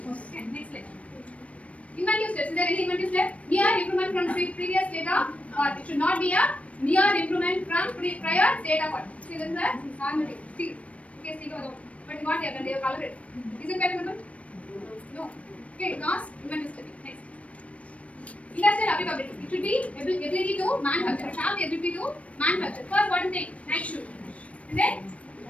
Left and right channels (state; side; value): late; right; 0.064 ms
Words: Okay, next slide. Inventive steps. Is there any inventive step? Near improvement from previous data, or it should not be a near improvement from prior data. What? See, this is a magnetic steel. Okay, steel over. But what they have done? They have colored it. Is it patent? No. Okay, because inventive step. Next. Industrial applicability. It should be ability to manufacture. It should have the ability to manufacture. First, what is the night shoe? And then